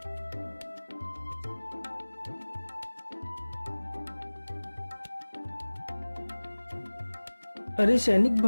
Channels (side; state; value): both; inverted; correlation -1.00